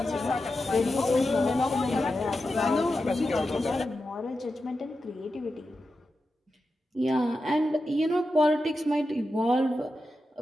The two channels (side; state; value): both; normal; correlation 0.90